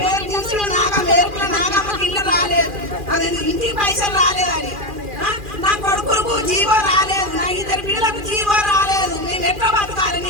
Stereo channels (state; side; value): late; left; 2.4 ms